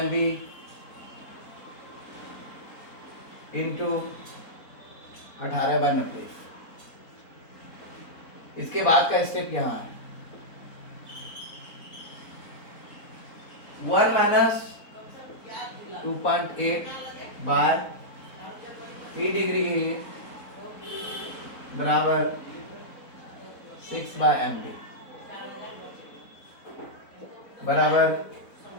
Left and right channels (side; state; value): right; late; 4.1 ms